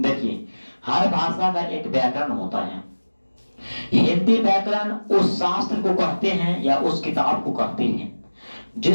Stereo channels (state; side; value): inverted; both; correlation -1.00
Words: हर भाषा का एक व्याकरण होता है। हिंदी व्याकरण उस शास्त्र को कहते हैं या उस किताब को कहते हैं